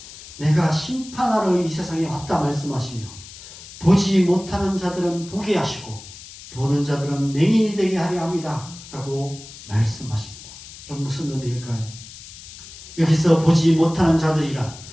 내가 심판하러 이 세상에 왔다 말씀하시며 보지 못하는 자들은 보게 하시고 보는 자들은 맹인이 되게 하려 합니다 라고 말씀하십니다. 그럼 무슨 의미일까요? 여기서 보지 못하는 자들이란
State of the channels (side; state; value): left; noise; hiss, 16 dB below the sound